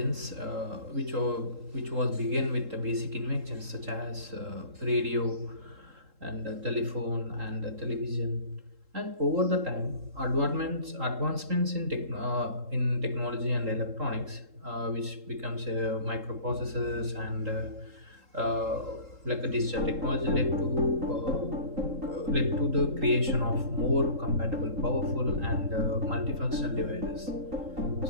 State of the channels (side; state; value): left; late; 3.7 ms